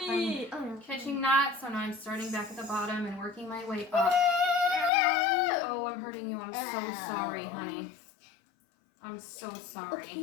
I'm catching knots, so now I'm starting back at the bottom and working my way up. Oh, I'm hurting you. I'm so sorry, honey. I'm so sorry.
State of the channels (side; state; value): right; drops out; at 4.9 s